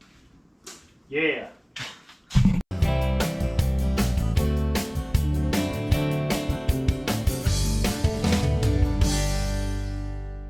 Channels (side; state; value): both; identical; correlation 1.00